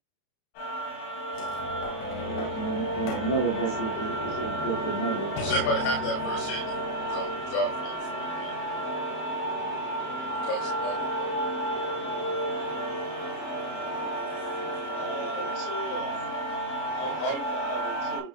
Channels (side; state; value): right; late; 32 ms